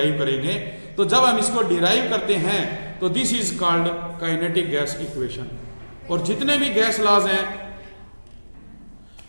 करेंगे। तो जब हम इसको डिराइव करते हैं तो this is called kinetic gas equation. और जितने भी गैस लॉज हैं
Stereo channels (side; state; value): both; inverted; correlation -1.00